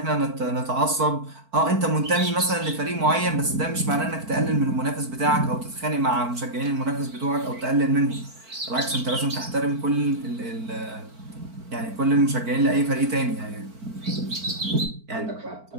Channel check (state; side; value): late; left; 4.5 ms